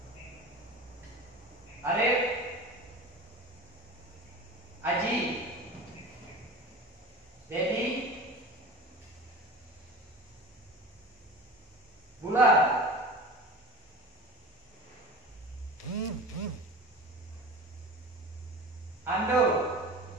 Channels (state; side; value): normal; both; correlation 0.34